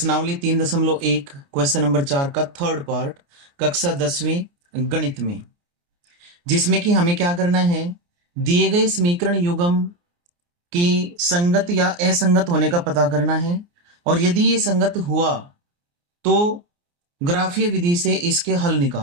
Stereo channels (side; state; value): left; late; 29 ms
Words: 3.1 क्वेश्चन नंबर 4 का थर्ड पार्ट कक्षा 10वीं गणित में, जिसमें कि हमें क्या करना है, दिए गए समीकरण युग्म की संगत या असंगत होने का पता करना है। और यदि ये संगत हुआ तो ग्राफीय विधि से इसके हल